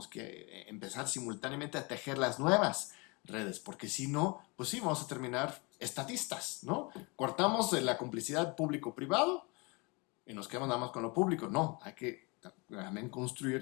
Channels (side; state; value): right; quieter; 28.5 dB